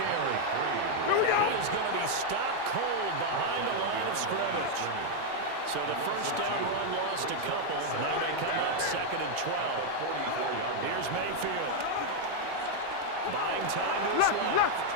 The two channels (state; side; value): different; both; correlation 0.00